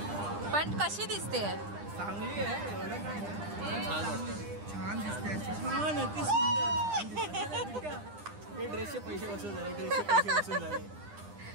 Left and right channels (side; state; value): left; late; 9.9 ms